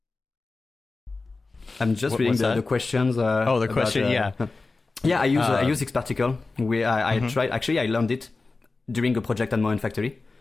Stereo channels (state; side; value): quieter; right; 3.7 dB